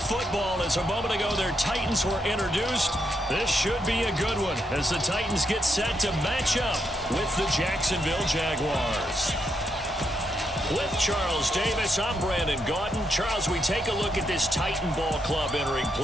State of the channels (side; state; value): both; normal; correlation 0.80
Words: football as a moment ago their Titans were introduced. This should be a good one as the Titans get set to match up with the Jacksonville Jaguars. With Charles Davis, I'm Brandon Godden. Charles, we take a look at this Titan Ball Club entering